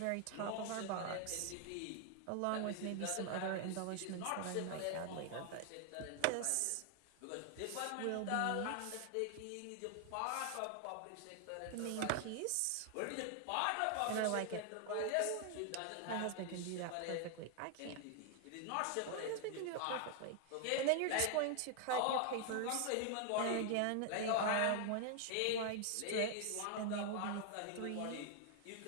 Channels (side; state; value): both; different; correlation 0.00